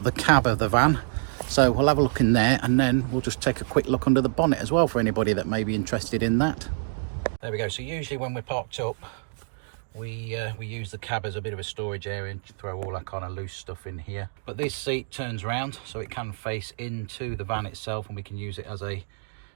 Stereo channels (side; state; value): left; silent; digital silence